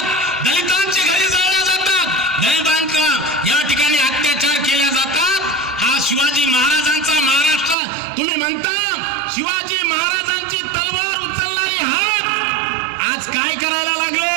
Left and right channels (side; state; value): left; drops out; at 7.8 s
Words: दलितांची घरे जाळल्या जातात, दलितांचा या ठिकाणी अत्याचार केले जातात. हा शिवाजी महाराजांचा महाराष्ट्र तुम्ही म्हणता. शिवाजी महाराजांची तलवार उचलणारी हात आज काय करायला लागले?